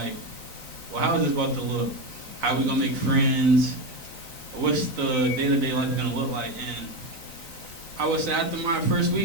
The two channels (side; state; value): left; late; 3.9 ms